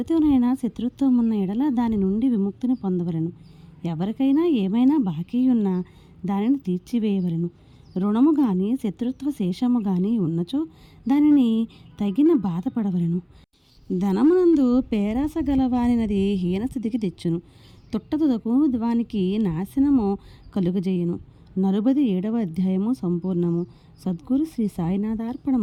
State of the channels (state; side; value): identical; both; correlation 1.00